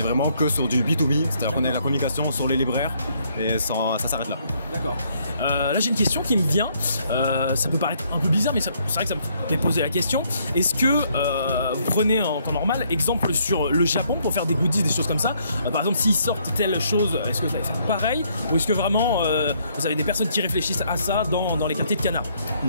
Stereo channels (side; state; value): both; inverted; correlation -0.69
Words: vraiment que sur du B2B, c'est-à-dire qu'on a de la communication sur les libraires et ça s'arrête là. D'accord. Là j'ai une question qui me vient, ça peut paraître un peu bizarre mais c'est vrai que ça me fait poser la question. Est-ce que vous prenez en temps normal exemple sur le Japon pour faire des goodies, des choses comme ça, par exemple s'ils sortent telle chose, est-ce que vous allez faire pareil ou est-ce que vraiment vous avez des personnes qui réfléchissent à ça dans les quartiers de Kana?